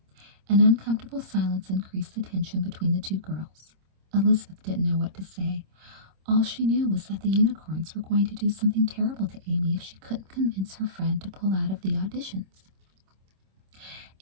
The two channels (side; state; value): left; late; 26 ms